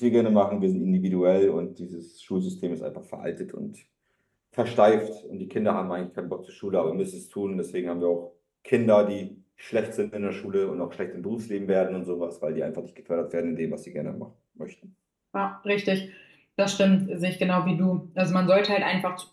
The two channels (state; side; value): identical; both; correlation 1.00